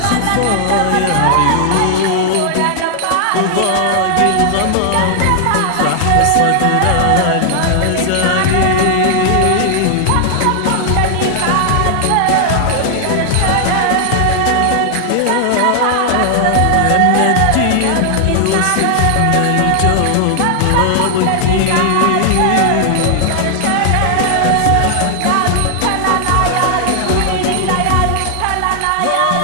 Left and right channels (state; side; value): different; both; correlation 0.00